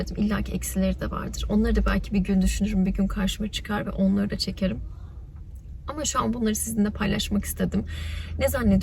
İlla ki eksileri de vardır. Onları da belki bir gün düşünürüm, bir gün karşıma çıkar ve onları da çekerim. Ama şu an bunları sizinle paylaşmak istedim. Ne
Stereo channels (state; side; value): identical; both; correlation 1.00